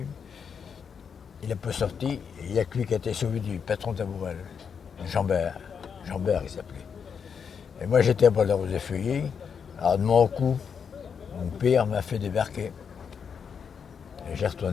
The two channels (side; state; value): right; quieter; 6.7 dB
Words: Il n'a pas sorti, et il n'y a que lui qui a été sauvé du patron Taboural. Jambert il s'appelait. Et moi j'étais à Bois-de-Rose-des-Feuillets. Alors de mon coup, mon père m'a fait débarquer. Et j'ai